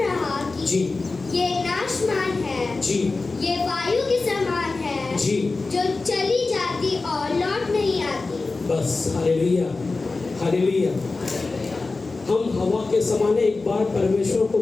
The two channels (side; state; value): right; quieter; 3.7 dB